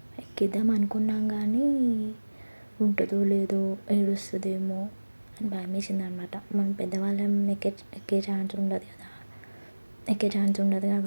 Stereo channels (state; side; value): inverted; both; correlation -1.00